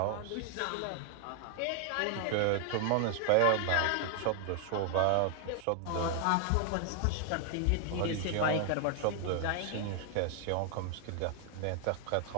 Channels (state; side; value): different; both; correlation 0.00